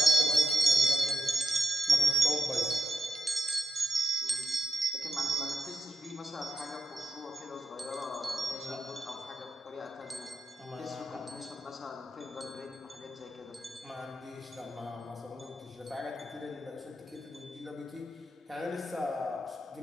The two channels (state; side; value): normal; both; correlation 0.87